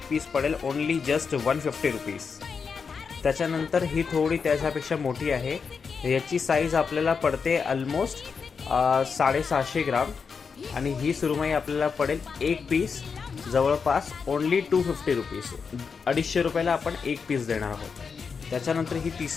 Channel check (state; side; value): quieter; right; 5.7 dB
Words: पीस पडेल ओनली जस्ट 150 रुपीज। त्याच्यानंतर ही थोडी त्याच्यापेक्षा मोठी आहे। याची साईज आपल्याला पडते ऑलमोस्ट 750 ग्राम आणि ही सुरमई आपल्याला पडेल एक पीस जवळपास ओनली 250 रुपीज। 250 रुपयाला आपण एक पीस देणार आहोत। त्याच्यानंतर ही